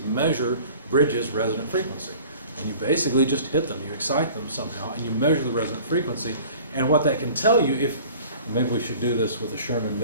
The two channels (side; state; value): both; inverted; correlation -0.46